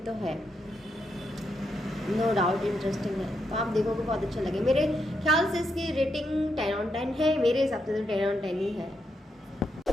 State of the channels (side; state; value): both; normal; correlation 0.81